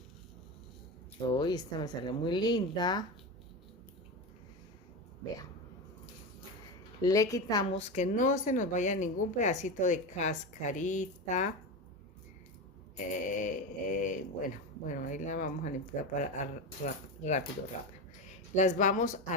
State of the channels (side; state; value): both; normal; correlation 0.19